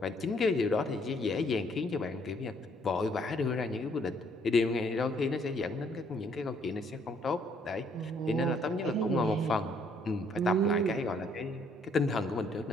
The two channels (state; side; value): normal; both; correlation 0.66